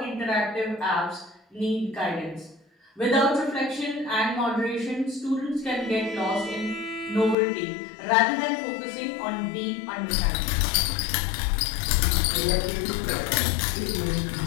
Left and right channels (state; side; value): drops out; right; at 7.4 s